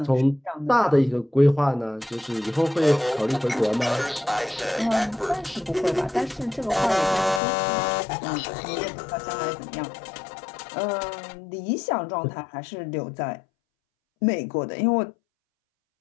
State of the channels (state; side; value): drops out; right; at 7.4 s